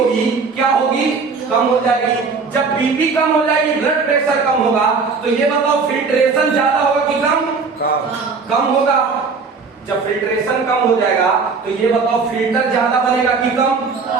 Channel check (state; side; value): quieter; left; 4.8 dB